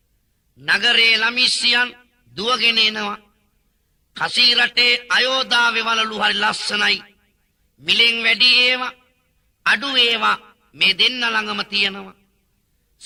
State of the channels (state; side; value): identical; both; correlation 1.00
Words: නගරේ ළමිස්සියන් දුවගෙන එනවා කසී රටේ අයෝධාවේ වලලු හරි ලස්සනයි මිලෙන් වැඩි ඒවා අඩු ඒවා මේ දෙන්න ළඟම තියෙනවා